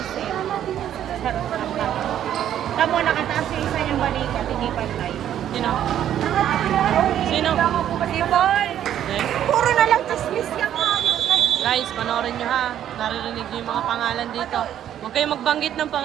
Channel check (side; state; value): left; quieter; 10.8 dB